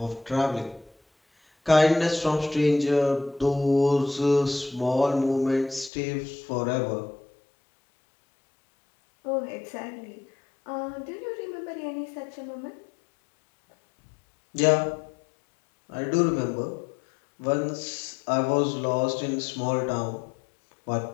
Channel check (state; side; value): drops out; right; at 5.9 s